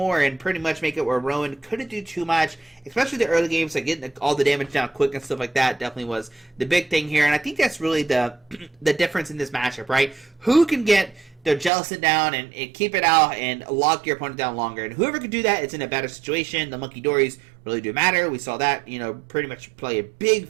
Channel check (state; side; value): drops out; left; at 11.7 s